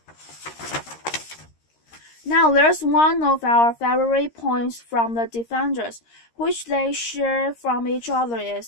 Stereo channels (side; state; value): right; late; 13 ms